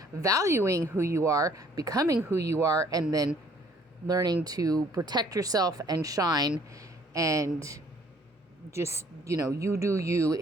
valuing who you are, becoming who you are, and then learning to protect yourself and shine, and just, you do you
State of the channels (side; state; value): both; normal; correlation 0.60